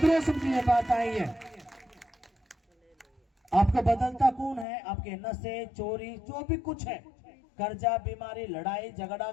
समझिए बात आई है? आपको बदलता कौन है? आपके नशे, चोरी, जो भी कुछ है, कर्जा, बीमारी, लड़ाई झगड़ा,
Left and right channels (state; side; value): drops out; right; at 4.7 s